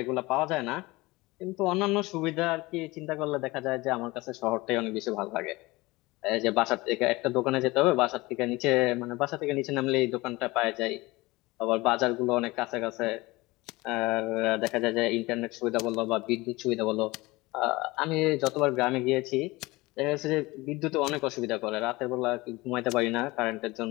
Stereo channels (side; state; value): right; quieter; 21.6 dB